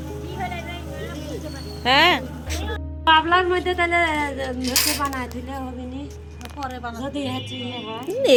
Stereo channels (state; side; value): identical; both; correlation 1.00